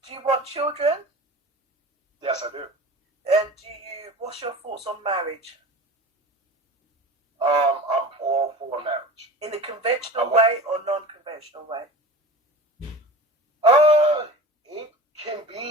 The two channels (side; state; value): both; normal; correlation 0.36